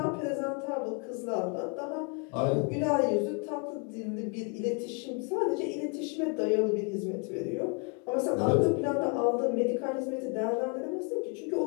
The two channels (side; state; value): right; quieter; 34.5 dB